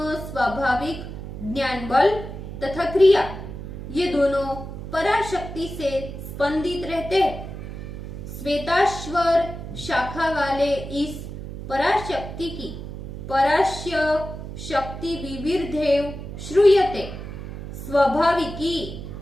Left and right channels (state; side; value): noise; right; hum, 9 dB below the sound